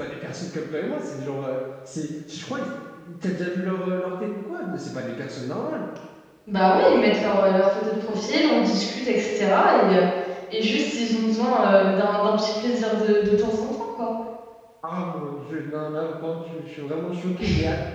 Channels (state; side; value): identical; both; correlation 1.00